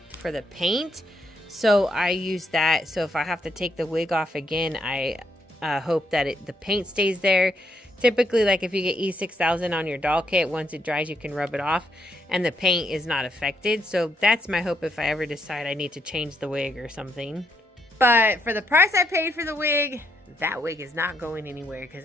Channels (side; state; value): both; normal; correlation 0.76